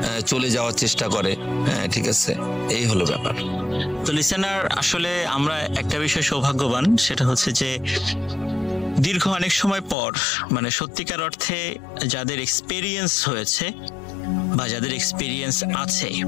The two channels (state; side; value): drops out; right; at 10.0 s